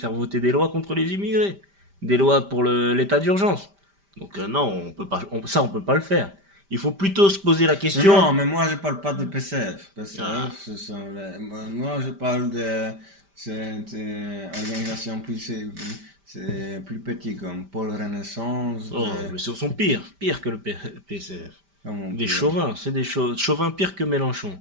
voter des lois contre les immigrés. Des lois pour l'état d'urgence. Donc, non, on peut pas, on peut pas le faire. Il faut plutôt se poser la question. Non, mais moi je parle pas de PCF. PCF, Ah, moi je parle de cette organisation c'est plus petit comme Pôle Renaissance. oh, mais ce sont pires que le PCF. Comment on Des peut- chauvins, c'est des chauvins pires que Mélenchon.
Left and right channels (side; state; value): left; late; 5.1 ms